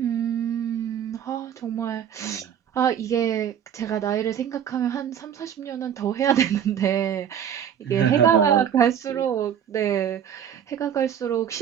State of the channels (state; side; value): quieter; left; 9.0 dB